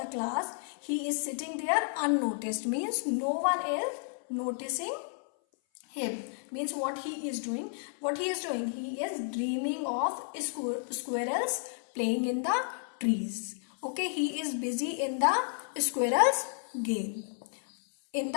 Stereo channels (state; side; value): silent; right; 57 dB below the other